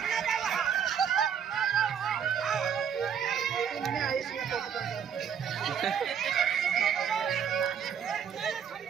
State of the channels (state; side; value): quieter; left; 7.9 dB